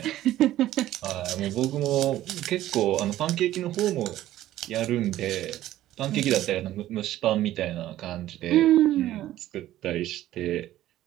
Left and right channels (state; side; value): quieter; left; 14.0 dB